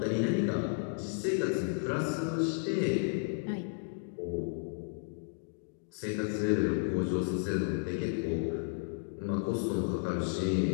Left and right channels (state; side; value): silent; right; digital silence